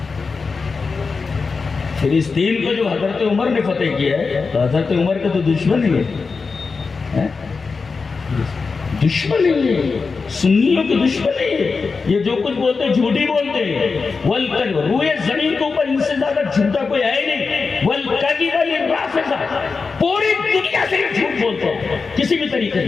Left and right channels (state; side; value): quieter; right; 4.6 dB